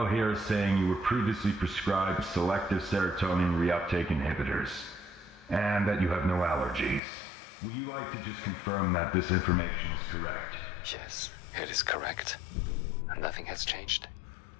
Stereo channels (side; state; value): right; drops out; at 7.0 s